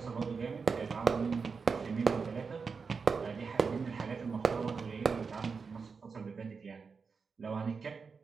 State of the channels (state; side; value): quieter; left; 5.2 dB